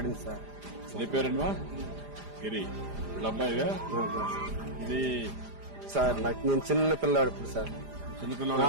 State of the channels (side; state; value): left; late; 4.9 ms